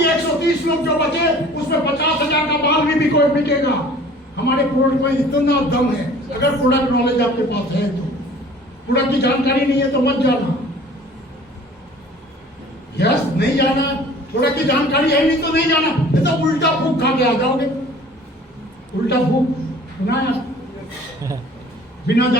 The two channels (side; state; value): both; normal; correlation 0.49